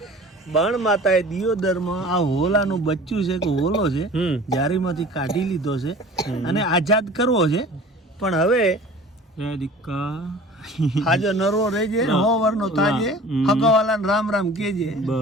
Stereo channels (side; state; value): both; normal; correlation 0.43